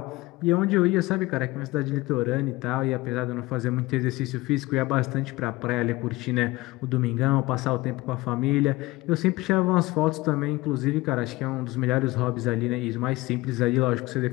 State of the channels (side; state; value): right; quieter; 20.1 dB